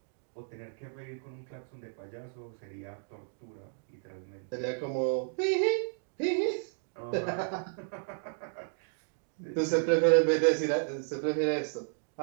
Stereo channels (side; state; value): left; silent; digital silence